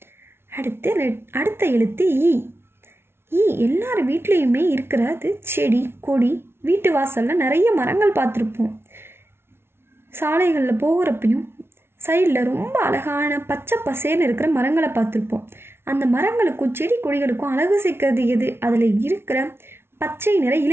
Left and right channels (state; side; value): late; left; 0.12 ms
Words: அடுத்த எழுத்து ஈ. ஈ எல்லார் வீட்லேயுமே இருக்கிறது செடி கொடி. வீட்டு வாசலில் நிறைய மரங்கள் பார்த்துருப்போம். சாலைகளில் போகிறப்பையும் சைடில் ரொம்ப அழகான பச்சை பசேர்னு இருக்கிற மரங்களை பார்த்துருப்போம். அந்த மரங்களுக்கும் செடி கொடிகளுக்கும் அழகு சேர்க்கறது எது? அதில் இருக்கிற பச்சை நிற